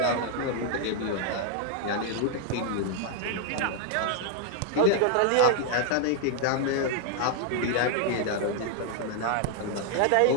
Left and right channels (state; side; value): different; both; correlation 0.00